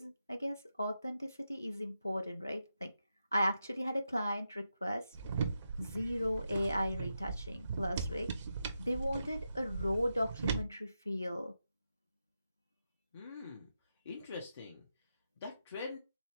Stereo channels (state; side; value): inverted; both; correlation -0.87